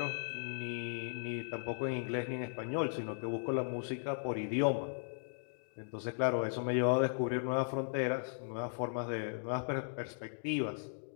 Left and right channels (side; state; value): right; silent; digital silence